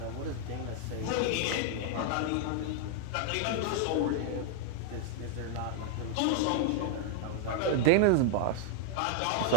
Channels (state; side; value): different; both; correlation 0.00